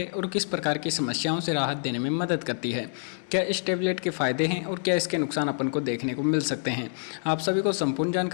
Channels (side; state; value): right; silent; digital silence